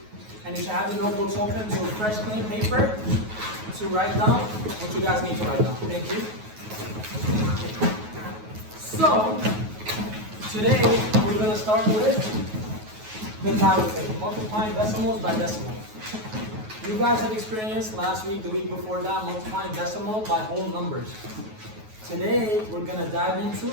And you should have the notebooks open to a fresh, clean paper to write down what you guys need to write down. Thank you. Okay. So, today we're going to start with the tablet thing, multiplying decimals by decimals. You guys have experienced last week, the week before that, multiplying decimal by whole numbers. Today, we're going to dive into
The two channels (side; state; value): left; late; 9.3 ms